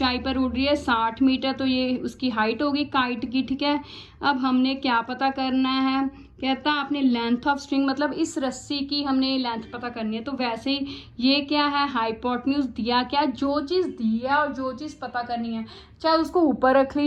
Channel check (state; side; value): identical; both; correlation 1.00